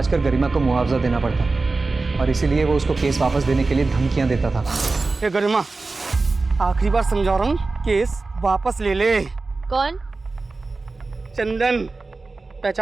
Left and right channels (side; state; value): left; quieter; 3.7 dB